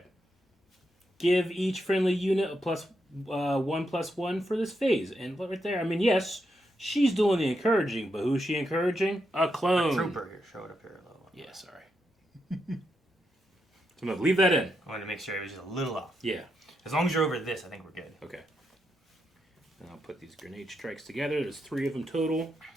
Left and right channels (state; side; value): normal; both; correlation 0.83